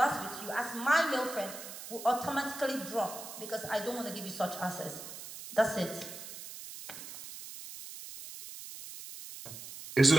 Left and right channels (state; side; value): noise; right; hiss, 12 dB below the sound